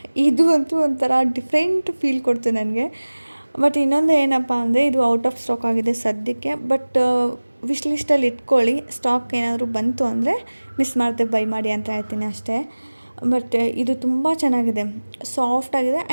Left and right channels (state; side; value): inverted; both; correlation -1.00